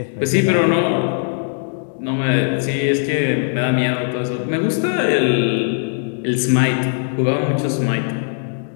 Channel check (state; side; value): silent; right; 66 dB below the other